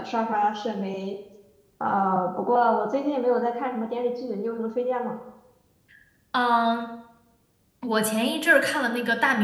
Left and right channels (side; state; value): both; identical; correlation 1.00